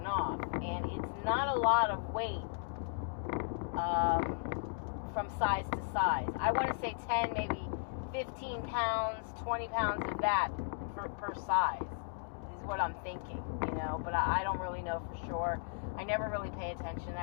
off. And it's not a lot of weight from size to size. I want to say 10, maybe 15 pounds, 20 pounds of that per size is what I'm thinking, you know. But I don't really know for sure. I never really pay attention to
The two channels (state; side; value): silent; right; digital silence